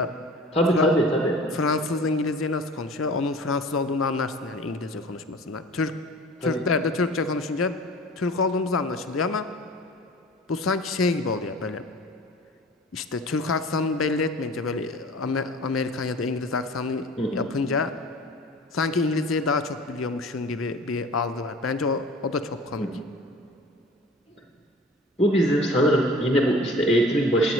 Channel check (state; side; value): normal; both; correlation 0.43